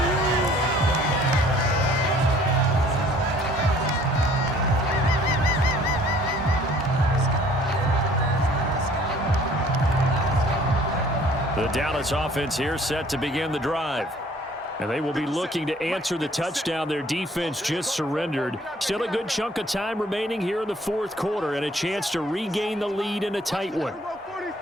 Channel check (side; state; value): both; normal; correlation 0.56